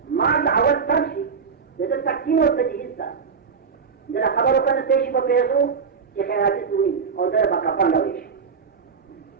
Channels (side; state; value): left; quieter; 5.8 dB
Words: ما अवल तफसी द तफसील व तजदीद था जरा खबर को तेज को पेशो कि खैराती हुई और दर कफन लवेश